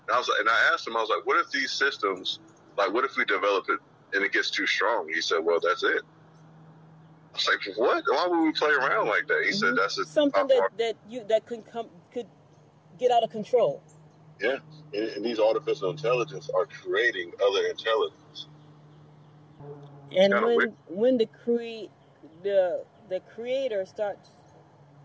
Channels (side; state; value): both; identical; correlation 1.00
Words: And I asked him, I was like, what if these systems, what if we develop it and it gets too strong? He said, well, that's it. I was like, what? Why would we play around like that? He said, that's something that could get out of control. Yeah, and these artificial intelligence are creating other intelligence. And when the creator starts,